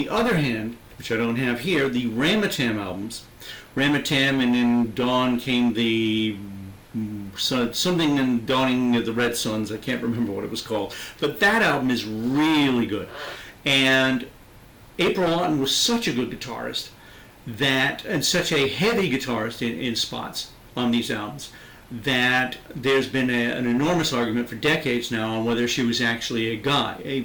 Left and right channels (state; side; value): identical; both; correlation 1.00